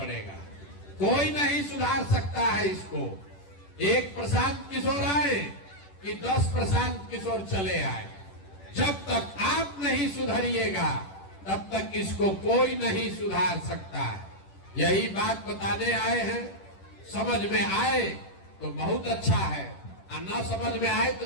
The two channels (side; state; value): right; late; 10 ms